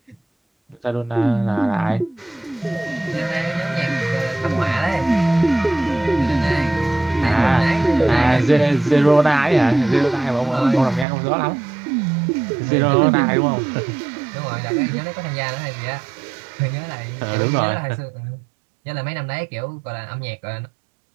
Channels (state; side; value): drops out; left; at 11.1 s